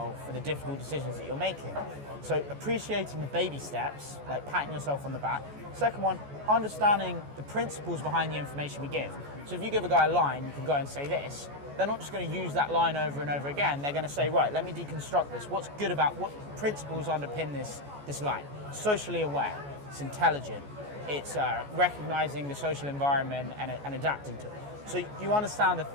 for the difficult decisions that you're making. So appreciating the baby steps, like patting yourself on the back. Second one, understanding the principles behind the information we give. So if you give a guy a line, you can go and say this. They're not just going to use that line over and over again. They're going to say, right, let me deconstruct this. What's good about, what principles underpin this line? Socially aware, it's intelligent, it's recognizing the social environment and adapting to it. So you understand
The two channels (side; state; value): left; late; 14 ms